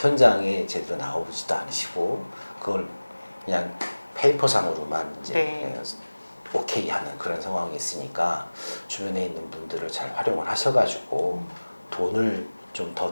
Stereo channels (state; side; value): inverted; both; correlation -1.00